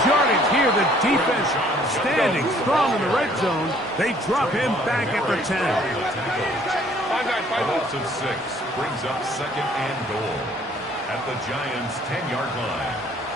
yardage here. The defense standing strong in the red zone. They drop him back at the 10. A loss of 6 brings up second and goal at the Giants' 10-yard line.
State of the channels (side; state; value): both; normal; correlation 0.59